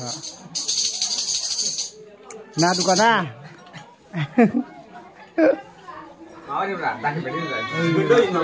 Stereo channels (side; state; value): both; identical; correlation 1.00